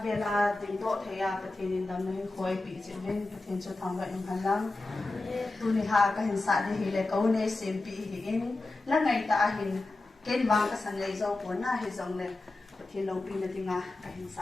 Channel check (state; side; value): quieter; right; 3.1 dB